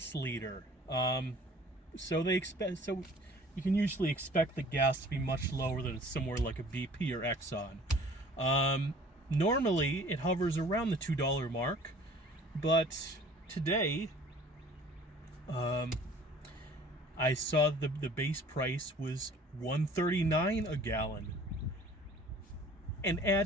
leader. So you can usually expect the gas to be much lower than somewhere like a BP or Exxon. Normally it hovers around the $2 mark, but today I saw the base price was $1.39 a gallon. And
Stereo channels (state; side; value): normal; both; correlation 0.50